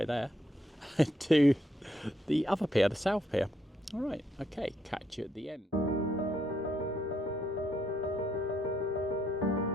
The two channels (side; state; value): both; normal; correlation 0.74